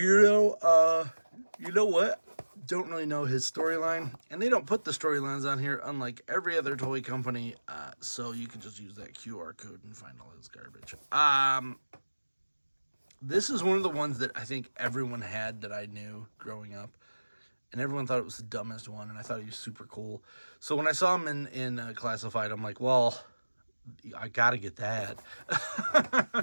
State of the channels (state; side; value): inverted; both; correlation -1.00